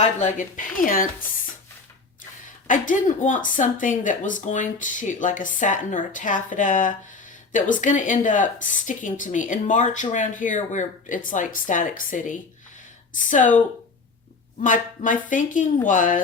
pants, I didn't want something that was going to, like a satin or a taffeta, that was going to end up sticking to me. In March around here, where it's like Static City. So my thinking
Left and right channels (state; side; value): quieter; right; 4.2 dB